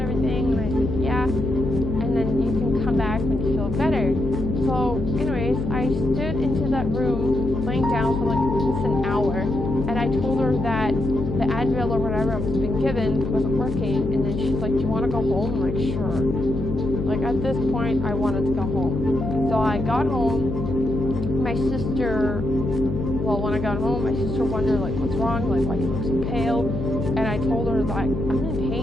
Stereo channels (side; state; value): left; noise; hum, 4 dB below the sound